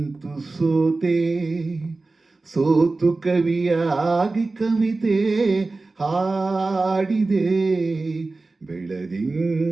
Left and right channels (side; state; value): left; quieter; 3.4 dB